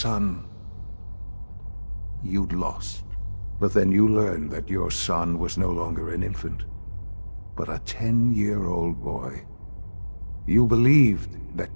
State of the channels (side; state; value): both; inverted; correlation -1.00